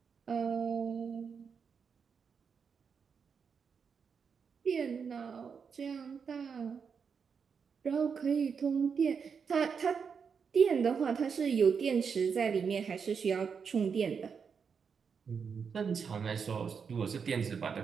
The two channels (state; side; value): quieter; left; 6.2 dB